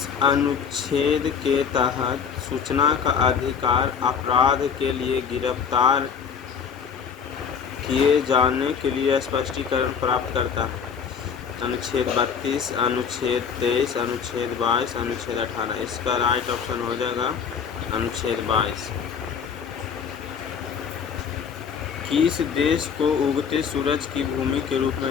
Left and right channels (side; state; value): right; quieter; 6.8 dB